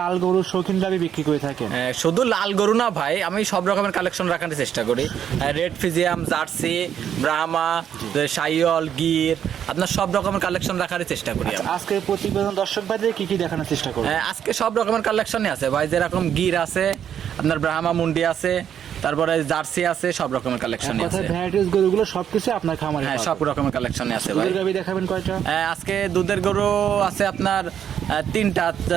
লাল গরুর শৌখিন গাভী বিক্রি করে থাকেন। শুধু লাল গরু না ভাই, আমি সব রকমের কালেকশন রাখার চেষ্টা করি। রেড ফিজিয়াম, জার্সি, ব্রাহ্মা, সাইওয়াল, গির, আপনার সব রকমের কালেকশন রাখার চেষ্টা করি। আজকে প্রতিবেদন দর্শক ভাইদের কি কি দেখানোর চেষ্টা করব? আজকে সব রকমের কালেকশনই আছে ভাই, যেরকম গির আছে, আপনার ব্রাহ্মা মুন্ডি আছে, তারপরে জার্সি আছে, সব রকমের কালেকশনই আছে। ভ্যারাইটিস গরুগুলো সবকিছু আপনার খামারে? হ্যাঁ, সব রকমের কালেকশনই আছে ভাই। দুধের গাভী দেখাবেন কয়টা? আজকে দুধের গরু আছে আপনার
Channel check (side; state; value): left; quieter; 9.1 dB